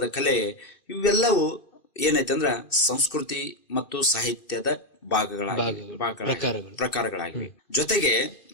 ಕಲೆ, ಇವೆಲ್ಲವೂ ಏನೈತಂದ್ರ ಸಂಸ್ಕೃತಿ ಮತ್ತು ಸಾಹಿತ್ಯದ ಪ್ರಕಾರಗಳಾಗಿವೆ. ಜೊತೆಗೆ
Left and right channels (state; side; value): late; right; 2.5 ms